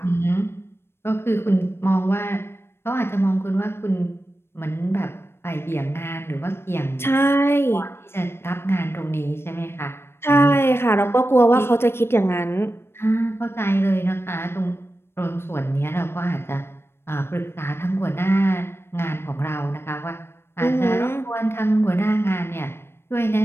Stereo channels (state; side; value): late; right; 0.12 ms